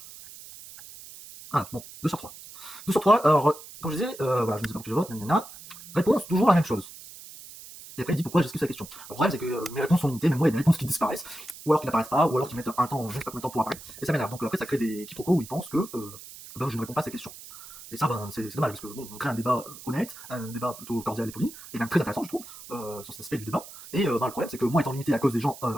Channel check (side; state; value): right; noise; hiss, 16 dB below the sound